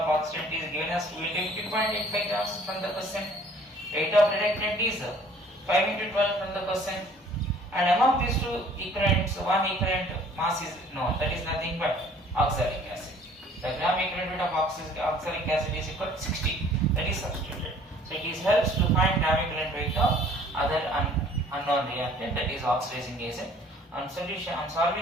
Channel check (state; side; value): normal; both; correlation 0.54